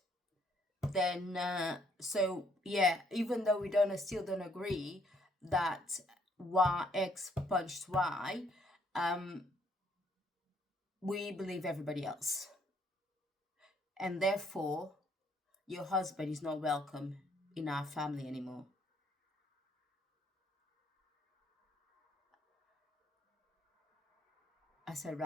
then so yeah, even though we still don't agree that Y X punched Y, we believe everybody else. And therefore, your husband is not welcome in our family anymore. I said,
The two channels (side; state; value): both; normal; correlation 0.67